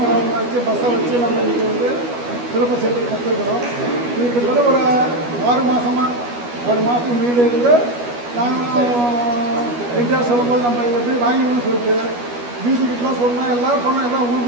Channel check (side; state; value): left; late; 12 ms